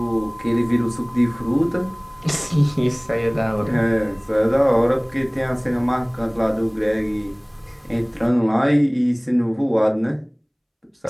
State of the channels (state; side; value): identical; both; correlation 1.00